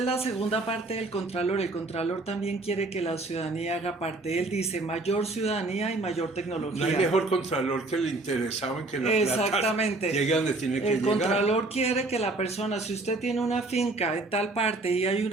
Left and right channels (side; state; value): left; quieter; 3.1 dB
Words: la segunda parte del Contralor. El Contralor también quiere que la ciudadanía haga parte. Él dice mayor ciudadanía y mayor tecnología. No hay mejor contralor que el interesado en que la Exactamente. plata llegue donde tiene que llegar. El Contralor quiere que la persona, si usted tiene una finca en tal parte y hay